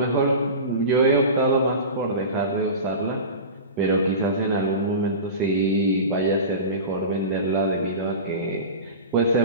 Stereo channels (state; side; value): inverted; both; correlation -0.30